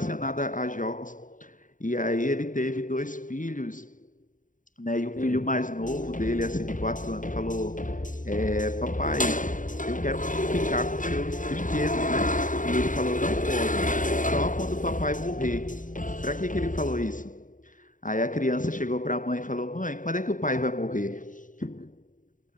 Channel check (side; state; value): right; late; 0.38 ms